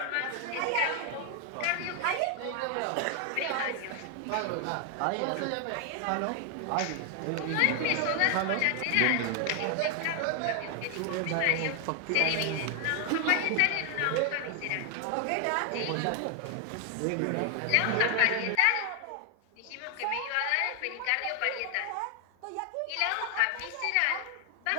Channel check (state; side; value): different; both; correlation 0.00